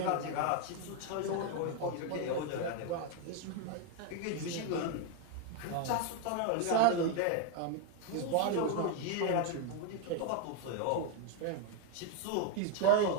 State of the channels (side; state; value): both; different; correlation 0.02